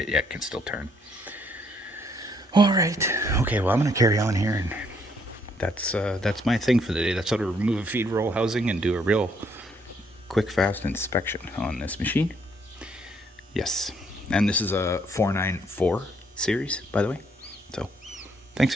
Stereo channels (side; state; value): both; normal; correlation 0.69